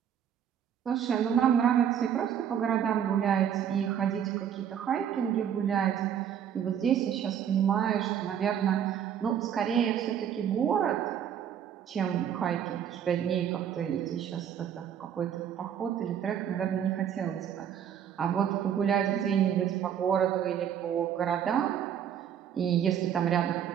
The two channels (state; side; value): quieter; left; 9.0 dB